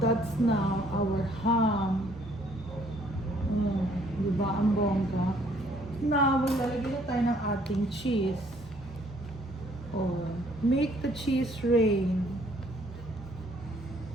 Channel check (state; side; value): normal; both; correlation 0.63